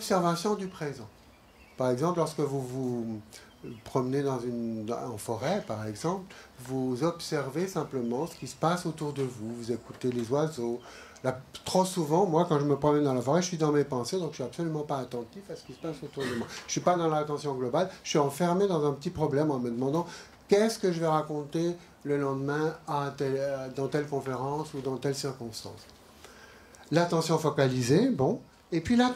du présent. Par exemple, lorsque vous vous promenez en forêt, par exemple, vous observez simplement ce qui se passe autour de vous. Vous écoutez les oiseaux. Là, trop souvent, moi, quand je me promène dans la forêt, je suis dans mes pensées, donc je suis absolument pas attentif à ce qui se passe autour de moi. Je suis pas dans l'attention globale, je suis enfermé dans un petit problème en me demandant qu'est-ce que je vais raconter le lendemain dans telle conférence ou dans telle circonstance. L'attention focalisée, bon, et puis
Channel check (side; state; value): both; identical; correlation 1.00